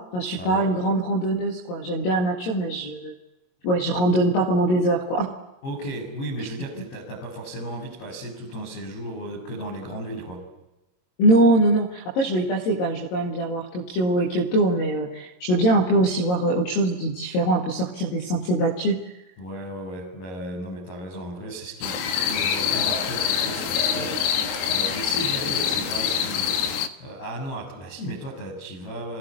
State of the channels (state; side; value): late; right; 23 ms